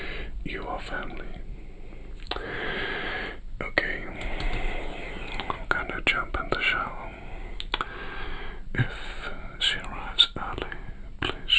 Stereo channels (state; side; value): identical; both; correlation 1.00